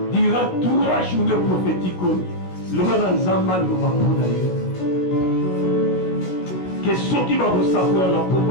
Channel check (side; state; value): right; late; 16 ms